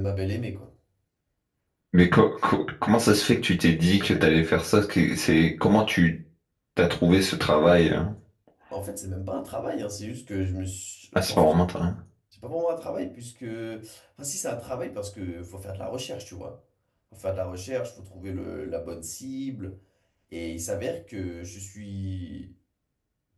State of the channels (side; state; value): both; identical; correlation 1.00